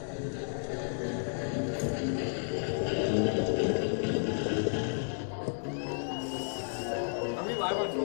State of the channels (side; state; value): right; silent; 56 dB below the other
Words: Are we live on